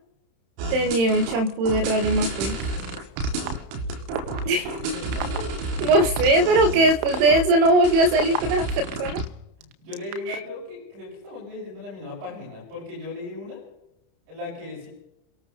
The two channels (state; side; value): late; left; 31 ms